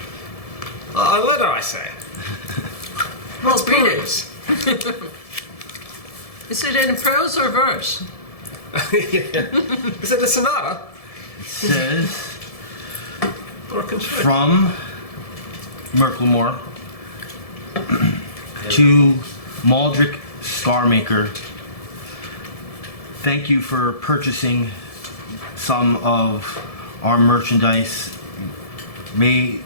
A letter, I say. Well, read it. Peruse. Is it in prose or verse? Is it a sonata? It says, Or a concerto? from Merklemore to Maldrick Scarmaker. Thank you for purchasing some of our merchandise. May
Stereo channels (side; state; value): right; late; 1.7 ms